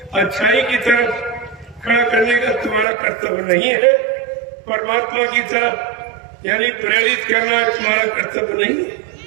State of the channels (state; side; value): drops out; left; at 2.9 s